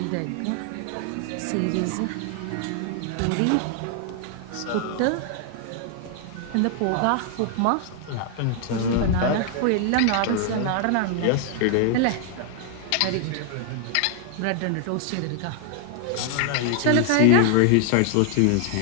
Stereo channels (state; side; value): different; both; correlation 0.00